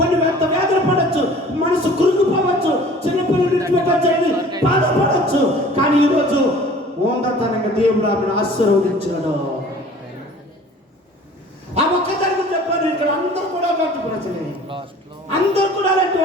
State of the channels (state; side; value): normal; both; correlation 0.47